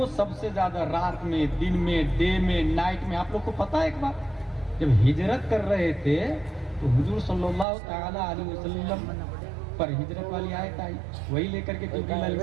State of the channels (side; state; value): left; drops out; at 7.7 s